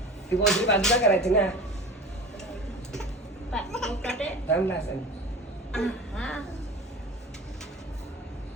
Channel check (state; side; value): normal; both; correlation 0.35